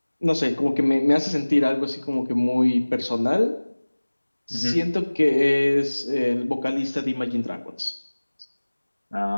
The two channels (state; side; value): inverted; both; correlation -1.00